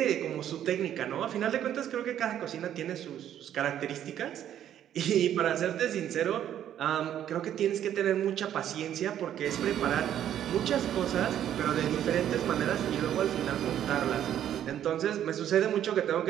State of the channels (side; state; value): left; quieter; 10.7 dB